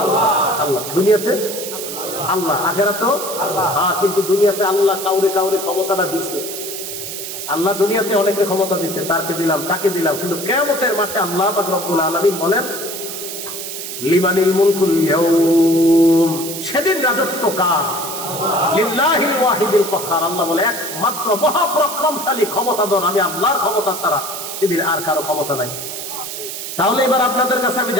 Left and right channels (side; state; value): right; noise; hiss, 7 dB below the sound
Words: আল্লাহ। আল্লাহ। দুনিয়াতে আল্লাহ, আখিরাতেও আল্লাহ। হ্যাঁ, কিন্তু দুনিয়াতে আল্লাহ কাউরে কাউরে ক্ষমতাটা দিছে। আল্লাহ দুনিয়াতে অনেকের ক্ষমতা দিছে, তারকে দিলাম, তাকে দিলাম, কিন্তু কিয়ামতের মাঠে আল্লাহ পাক রব্বুল আলামিন বলেন লিমানিল মুলকুল ইয়াউম, সেদিন রাজত্ব কার? লিল্লাহিল ওয়াহিদিল কাহ্হার। আল্লাহ বলে একমাত্র মহাপরাক্রমশালী ক্ষমতাধর আমি আল্লাহর ক্ষমতা ছাড়া সেদিন আর কারো ক্ষমতা নাই। তাহলে এবার আপনাদের কাছে আমি